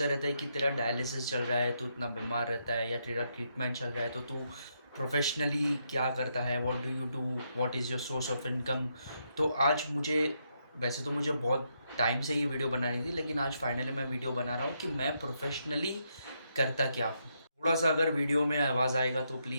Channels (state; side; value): inverted; both; correlation -0.79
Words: रहते हैं कि तेरा डायलिसिस चल रहा है, तू इतना बीमार रहता है, या तेरा ट्रीटमेंट चल रहा है तो तू प्रोफेशनली क्या करता है, what do you do, what is your source of income. तो आज मुझे, वैसे तो मुझे बहुत टाइम से ये वीडियो बनानी थी, लेकिन आज फाइनली मैं वीडियो बना रहा हूँ कि मैं प्रोफेशनली करता क्या हूँ। थोड़ा सा अगर वीडियो में आवाज़ आएगा तो